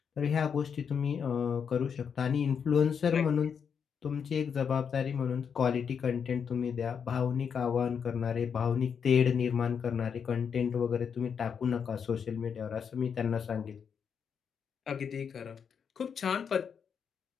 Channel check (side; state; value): right; quieter; 6.9 dB